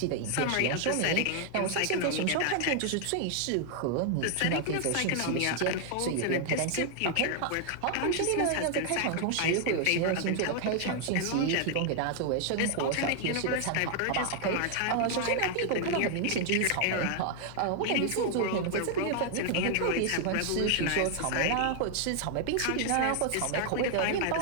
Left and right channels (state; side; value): different; both; correlation 0.00